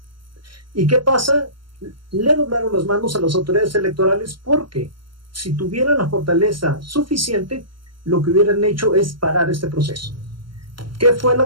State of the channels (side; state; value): left; late; 0.73 ms